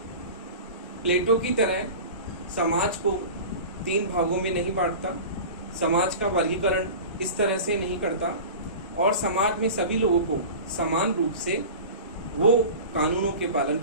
प्लेटो की तरह समाज को 3 भागों में नहीं बांटता, समाज का वर्गीकरण इस तरह से नहीं करता और समाज में सभी लोगों को समान रूप से वो कानूनों के पालन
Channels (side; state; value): both; inverted; correlation -0.34